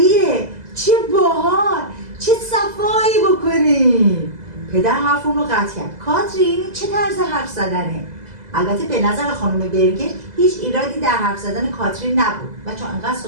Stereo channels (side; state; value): left; late; 2.0 ms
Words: چه باحال، چه صفایی بکنیم. پدر حرف اون رو قطع کرد. کاترین چه طرز حرف زدنه؟ البته به نظر خانم برگر هیچ ایرادی در حرف زدن کاترین نبود و چون انقدر